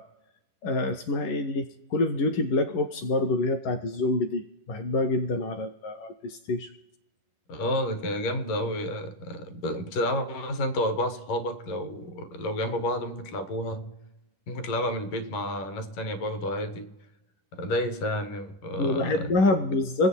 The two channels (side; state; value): right; late; 11 ms